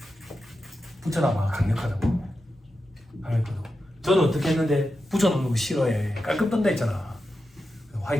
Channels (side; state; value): both; normal; correlation 0.90